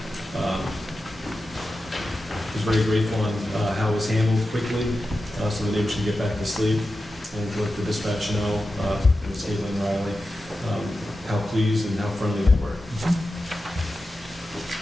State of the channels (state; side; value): normal; both; correlation 0.92